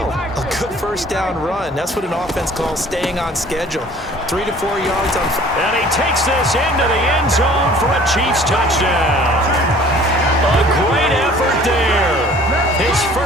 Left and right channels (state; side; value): normal; both; correlation 0.51